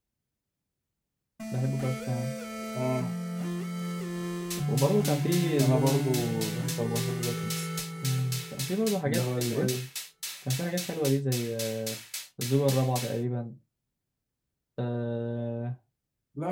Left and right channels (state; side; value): identical; both; correlation 1.00